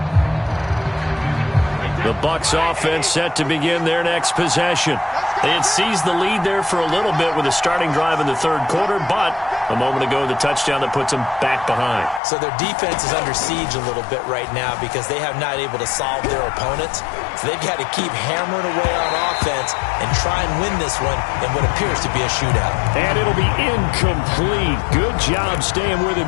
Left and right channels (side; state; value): right; drops out; at 12.2 s